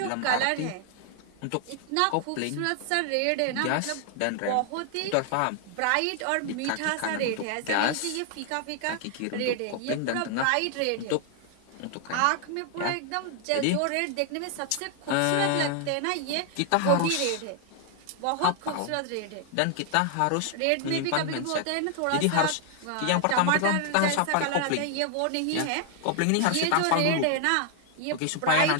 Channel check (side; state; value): both; different; correlation 0.00